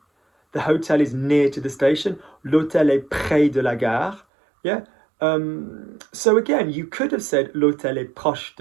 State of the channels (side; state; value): left; drops out; at 4.2 s